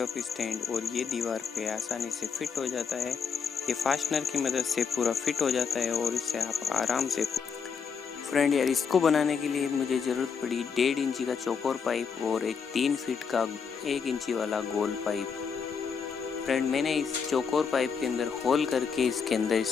स्टैंड और ये दीवार पे आसानी से फिट हो जाता है। ये फास्टनर की मदद से पूरा फिट हो जाता है और इससे आप आराम से। फ्रेंड यार, इसको बनाने के लिए मुझे ज़रूरत पड़ी 1.5 इंची का चौकोर पाइप और एक 3 फीट का 1 इंची वाला गोल पाइप। फ्रेंड, मैंने इस चौकोर पाइप के अंदर होल करके इसके अंदर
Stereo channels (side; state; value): right; quieter; 6.1 dB